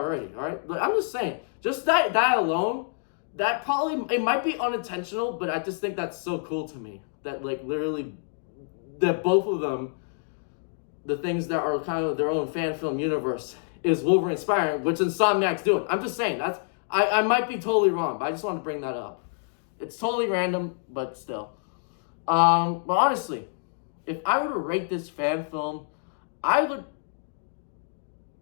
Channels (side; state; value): right; silent; digital silence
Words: all right? But I'm just saying, just that alone, that probably, it might be unintentional, but I just think that's so cool to me. That, literally, that both of them, the things that are kind of their own fan film universe, is Wolverine inspiring, which Insomniac's doing. I'm just saying, I might be totally wrong, but I just want to bring that up. It's totally random, but still. But honestly, if I were to rate this fan film, I